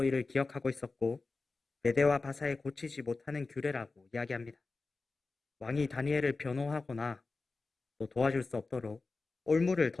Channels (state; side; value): quieter; right; 3.8 dB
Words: 이를 기억하고 있었고 메대와 바사에 고치지 못하는 규례라고 이야기합니다. 왕이 다니엘을 변호하거나 또 도와줄 수 없도록 올무를